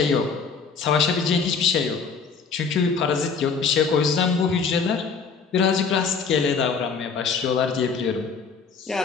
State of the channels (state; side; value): quieter; right; 5.4 dB